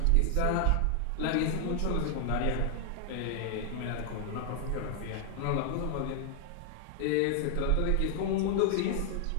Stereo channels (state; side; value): different; both; correlation 0.00